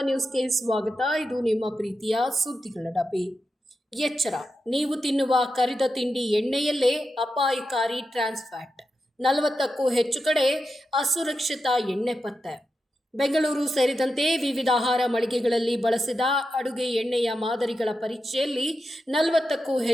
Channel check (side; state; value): both; normal; correlation 0.89